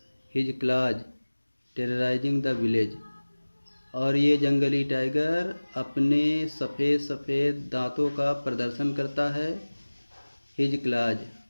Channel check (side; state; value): both; inverted; correlation -1.00